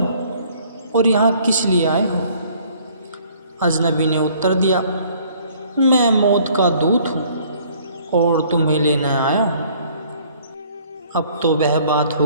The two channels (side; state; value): both; inverted; correlation -0.58